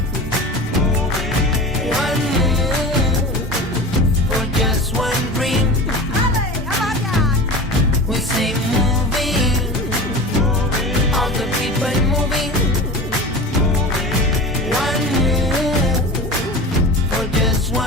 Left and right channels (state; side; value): normal; both; correlation 0.33